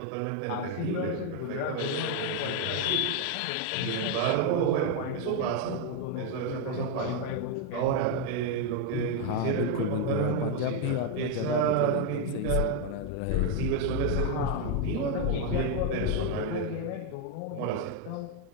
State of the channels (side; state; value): both; different; correlation 0.01